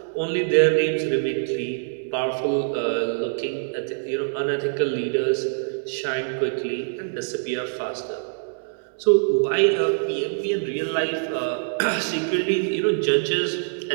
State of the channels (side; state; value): left; silent; 62 dB below the other